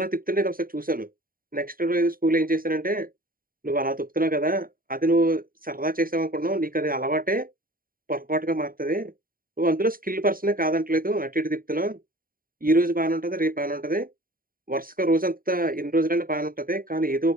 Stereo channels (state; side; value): late; left; 0.41 ms